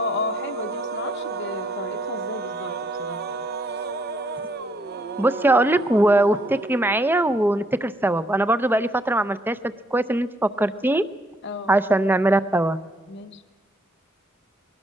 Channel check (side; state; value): both; normal; correlation 0.69